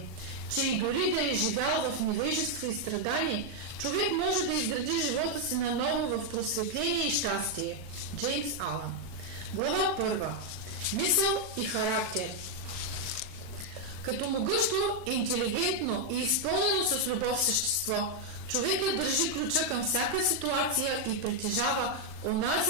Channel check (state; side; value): late; left; 39 ms